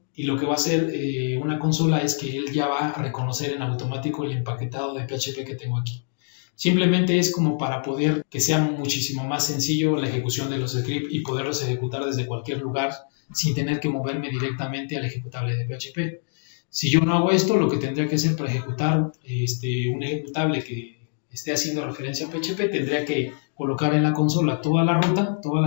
y lo que va a hacer una consola es que él ya va a reconocer en automático el empaquetado de PHP que tengo aquí. Simplemente es como para poder que sea muchísimo más sencillo la ejecución de los scripts y poderlos ejecutar desde cualquier lugar sin tener que moverme directamente al ejecutable de PHP. Si yo no hago esto, lo que tendría que hacer para ejecutar un ejecutable que esté haciendo referencia a PHP, tendría que colocar en la consola toda la ruta, toda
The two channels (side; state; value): right; silent; 62 dB below the other